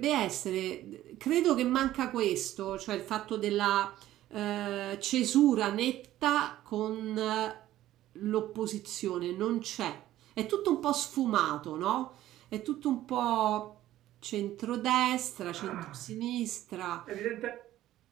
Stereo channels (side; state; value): left; quieter; 14.0 dB